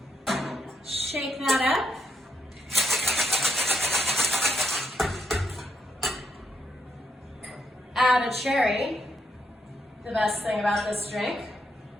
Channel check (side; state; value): both; normal; correlation 0.78